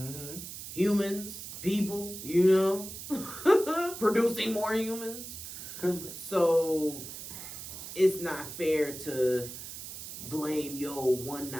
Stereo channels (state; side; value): noise; right; hiss, 10 dB below the sound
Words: Humans, people, producing more humans. So it's not fair to blame one